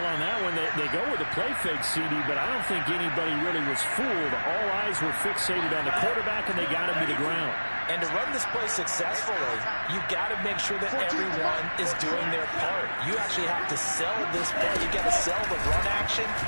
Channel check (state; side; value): inverted; both; correlation -1.00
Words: on that one, they go with a play fake, CD, but I don't think anybody really was fooled. All eyes were fixated on the quarterback, and they got him to the ground. And to run this play successfully, you've got to make sure that everyone is doing their part. You actually have to sell this play. You got to sell the run action.